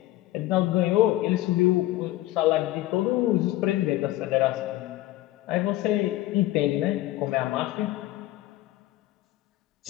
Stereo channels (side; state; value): right; quieter; 15.9 dB